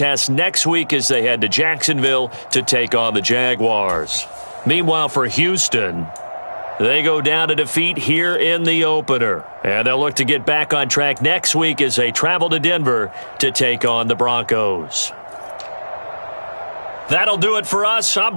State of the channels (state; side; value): inverted; both; correlation -1.00